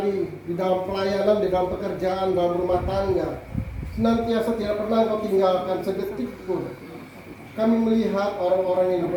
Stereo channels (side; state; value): both; identical; correlation 1.00